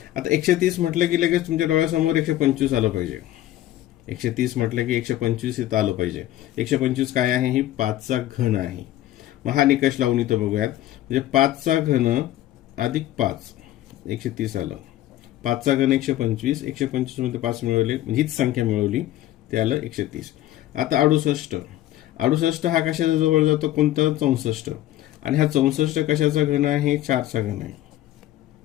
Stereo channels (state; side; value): quieter; right; 14.1 dB